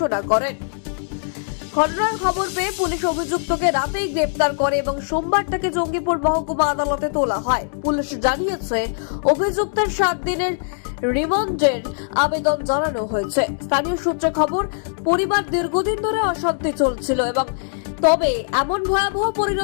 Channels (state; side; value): silent; right; digital silence